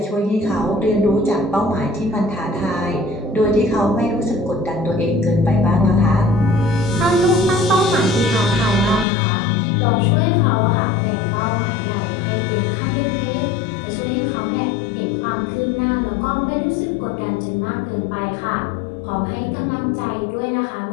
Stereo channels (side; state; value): right; drops out; at 9.1 s